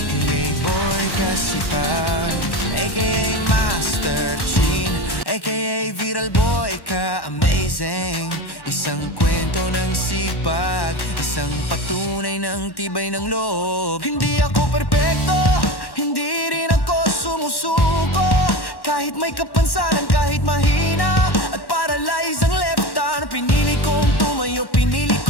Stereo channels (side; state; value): right; late; 1.1 ms